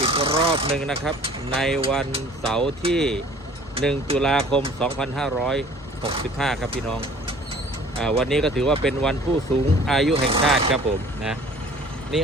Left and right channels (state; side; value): normal; both; correlation 0.51